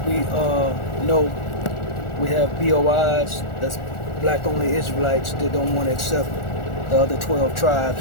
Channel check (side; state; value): right; late; 1.4 ms